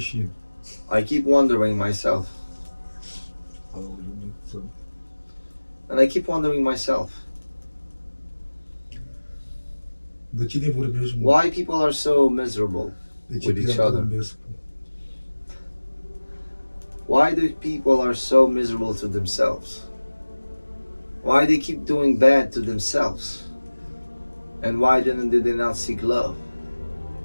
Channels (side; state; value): both; inverted; correlation -1.00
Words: I keep wondering myself, and I keep wondering myself, De cine vorbești, mă? why people are so miserable De ce with each te-am other. vorbesc? Why do people are so miserable to themselves? Why they keep doing bad to themselves? And why did they not seek love?